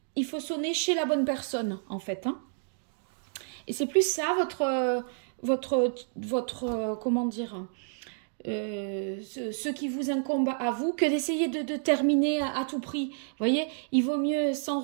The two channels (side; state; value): left; silent; digital silence